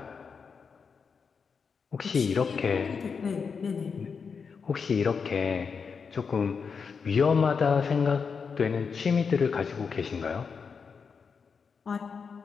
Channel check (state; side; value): quieter; right; 5.7 dB